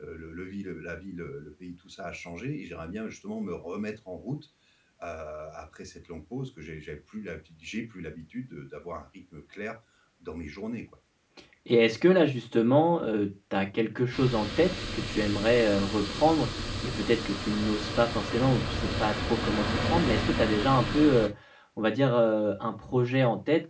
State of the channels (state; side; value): identical; both; correlation 1.00